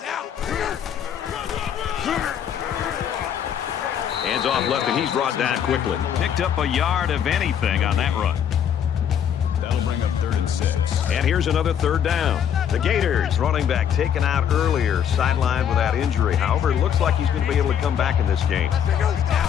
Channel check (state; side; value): quieter; right; 8.8 dB